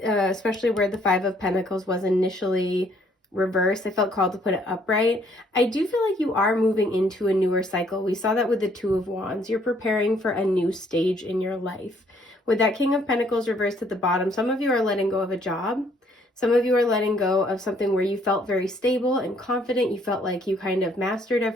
especially where the Five of Pentacles was initially reversed, I felt called to put it upright. I do feel like you are moving into a newer cycle. We saw that with the Two of Wands. You're preparing for a new stage in your life. With that King of Pentacles reversed at the bottom, some of you are letting go of a job. Some of you are letting go of something where you felt very stable and confident. You felt like you kind of mastered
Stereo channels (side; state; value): both; normal; correlation 0.65